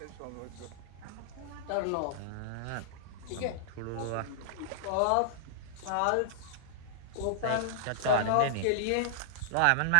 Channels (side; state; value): both; different; correlation -0.01